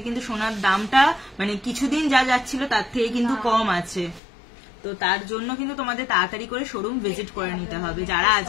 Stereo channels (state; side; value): drops out; right; at 4.2 s